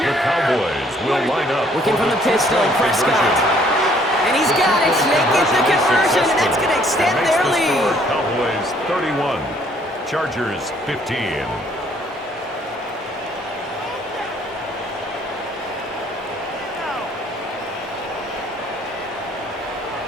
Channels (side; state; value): both; normal; correlation 0.62